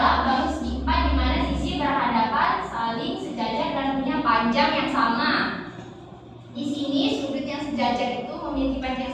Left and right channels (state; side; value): identical; both; correlation 1.00